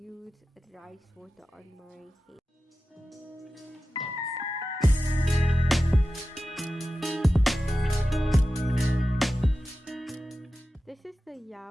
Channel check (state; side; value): normal; both; correlation 0.94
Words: rice water on my hair. This is the